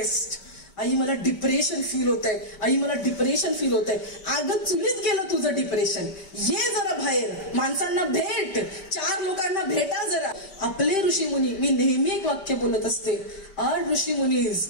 I मला डिप्रेशन फील होत आहे, आई मला डिप्रेशन फील होत आहे. अगं चुलीत गेलं तुझं डिप्रेशन, ये जरा बाहेर, माणसांना भेट, 4 लोकांना भेटा जरा. आपले ऋषीमुनी, मी नेहमी एक वाक्य बोलत असते, आर ऋषीमुनीज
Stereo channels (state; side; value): late; right; 5.1 ms